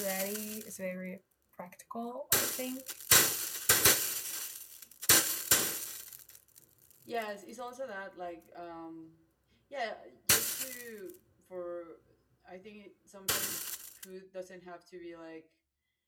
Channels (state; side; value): identical; both; correlation 1.00